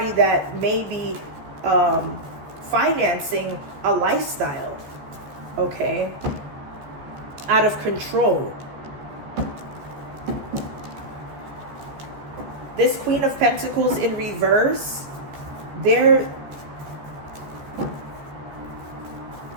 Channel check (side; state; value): left; late; 14 ms